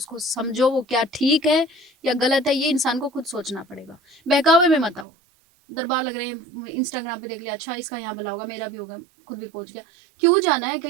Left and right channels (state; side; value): drops out; left; at 5.1 s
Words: समझो, वो क्या ठीक है या गलत है, ये इंसान को खुद सोचना पड़ेगा। बहकावे में मत आओ। दरबार लग रहे हैं, इंस्टाग्राम पे देख लिया, अच्छा इसका यहाँ भला होगा, मेरा भी होगा, खुद भी पहुंच गया। क्यों जाना है